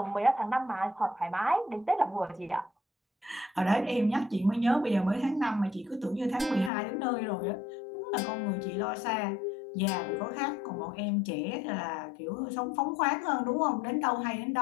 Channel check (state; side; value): drops out; right; at 6.7 s